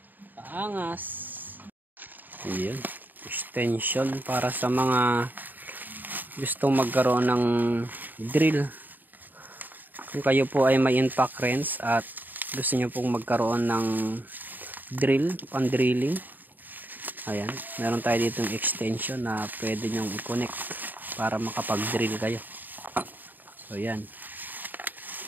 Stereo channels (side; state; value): left; late; 0.088 ms